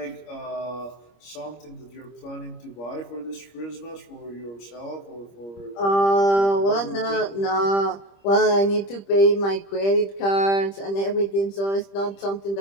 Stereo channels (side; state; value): right; late; 25 ms